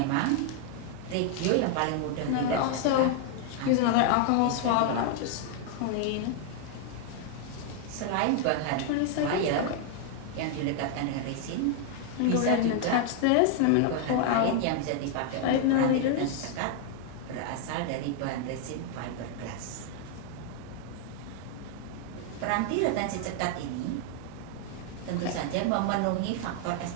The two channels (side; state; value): both; different; correlation 0.00